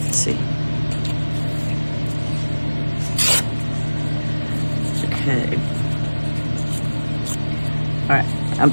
Okay. All right, I'm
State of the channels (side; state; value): both; inverted; correlation -1.00